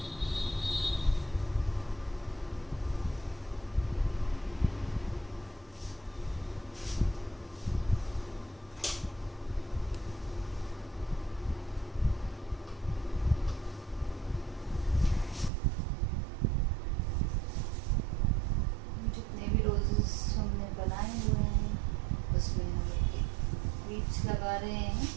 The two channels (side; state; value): left; drops out; at 15.5 s